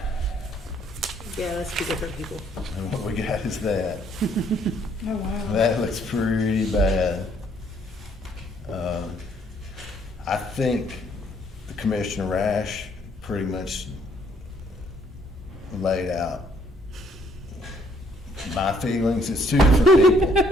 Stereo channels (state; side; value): normal; both; correlation 0.65